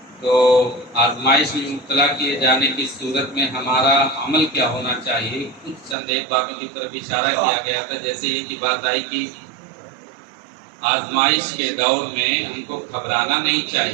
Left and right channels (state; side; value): drops out; left; at 6.0 s